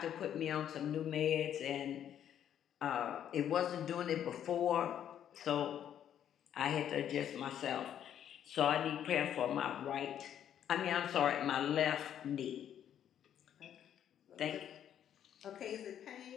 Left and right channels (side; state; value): right; quieter; 9.9 dB